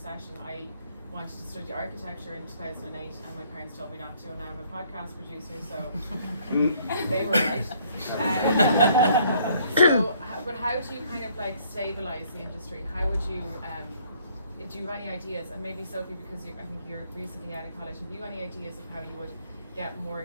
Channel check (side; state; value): both; inverted; correlation -0.64